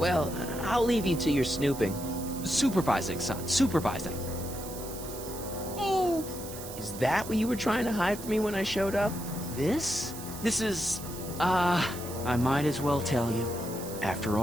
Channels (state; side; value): noise; right; hiss, 12 dB below the sound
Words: I'll leave you to your snooping. Supervising, son. Supervising. Oh! Is that what you were trying to hide from me when I showed up? This? This is... I might as well tell you. After